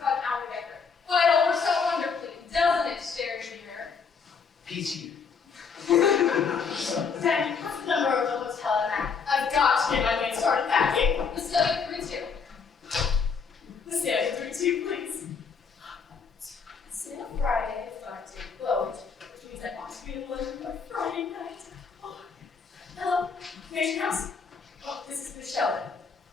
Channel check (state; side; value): quieter; right; 5.7 dB